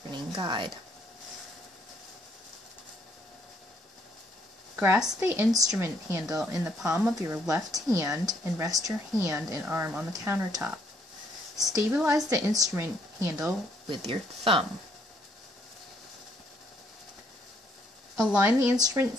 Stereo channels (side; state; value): both; normal; correlation 0.69